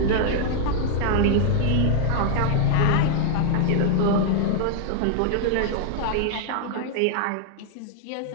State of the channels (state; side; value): different; both; correlation -0.01